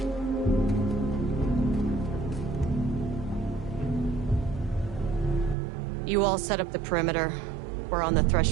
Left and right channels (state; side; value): drops out; left; at 5.6 s